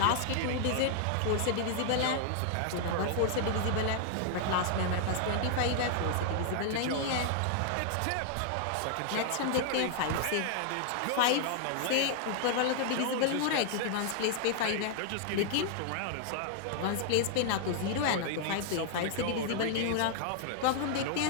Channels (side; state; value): both; different; correlation 0.00